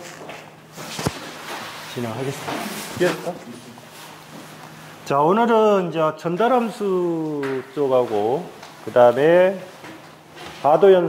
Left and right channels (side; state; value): both; identical; correlation 1.00